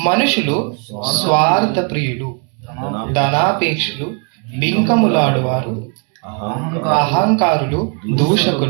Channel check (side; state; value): left; quieter; 37.0 dB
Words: మనుషులు స్వార్థ ప్రియులు, ధనాపేక్షులు, బింకములాడువారు, అహంకారులు,